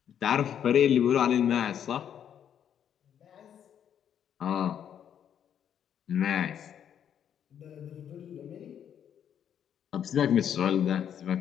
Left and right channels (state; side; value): quieter; right; 9.1 dB